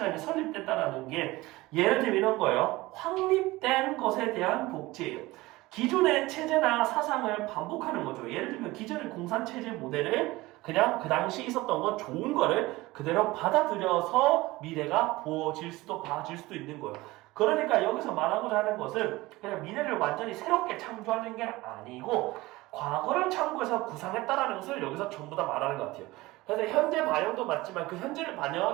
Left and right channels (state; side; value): quieter; left; 19.9 dB